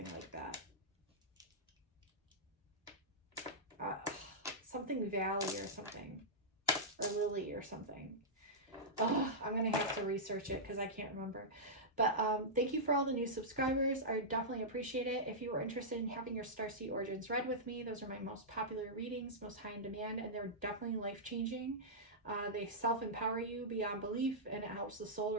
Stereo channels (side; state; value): both; normal; correlation -0.12